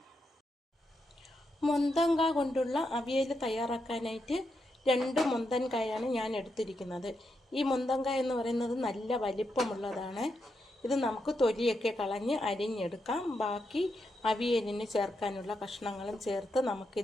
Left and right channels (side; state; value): both; normal; correlation 0.83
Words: മൊന്തങ്ക കൊണ്ടുള്ള അവിയൽ തയ്യാറാക്കാനായിട്ട് 2 മൊന്തൻകായാണ് ഞാൻ എടുത്തിരിക്കുന്നത്. ഈ മൊന്തങ്ക എന്ന് പറയുന്നത് നല്ല വലിപ്പമുള്ളതാണ്. ഇത് നമുക്ക് തൊലിയൊക്കെ കളഞ്ഞ് അരിഞ്ഞെടുക്കാം. ബാക്കി അവിയലിന് ചേർക്കാനുള്ള കഷ്ണങ്ങളും ചേർത്ത്